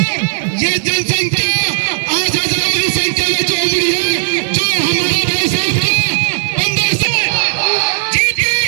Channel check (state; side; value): silent; left; digital silence